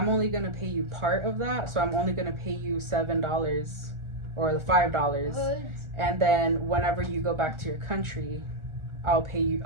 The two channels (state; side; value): late; left; 1.4 ms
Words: only gonna pay you part of that, so I'm only gonna pay you $7 or the $5, and then whenever you go back to your country,